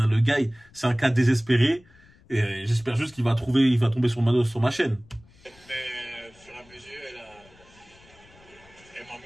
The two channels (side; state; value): left; noise; rumble, 27 dB below the sound